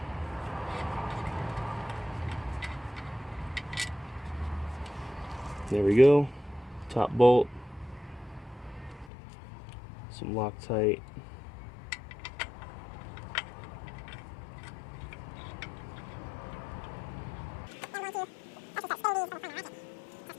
There we go, top bolt, some Loctite,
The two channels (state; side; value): drops out; right; at 9.1 s